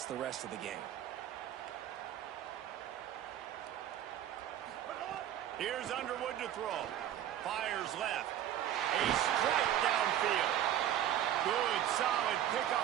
the rest of the game. Here's Underwood to throw. Fires left. A strike downfield. Good, solid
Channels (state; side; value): quieter; left; 11.3 dB